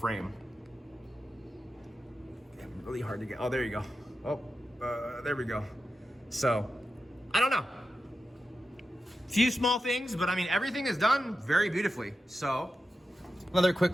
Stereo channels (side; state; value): both; normal; correlation 0.91